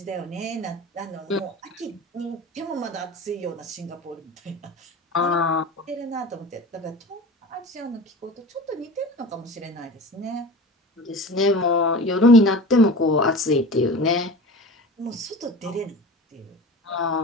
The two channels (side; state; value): both; normal; correlation 0.34